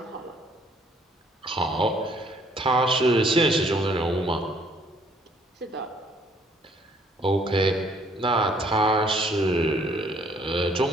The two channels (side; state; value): both; normal; correlation 0.63